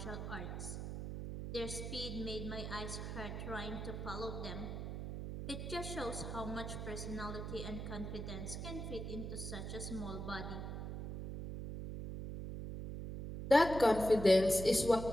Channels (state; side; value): noise; right; hum, 6 dB below the sound